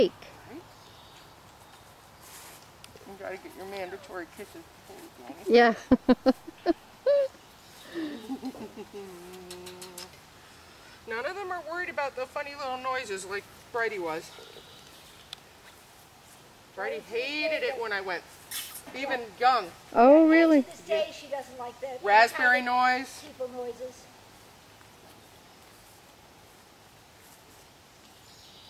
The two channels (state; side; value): identical; both; correlation 1.00